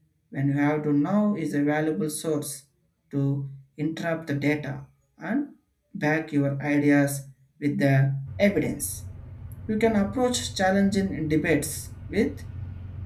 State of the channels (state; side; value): identical; both; correlation 1.00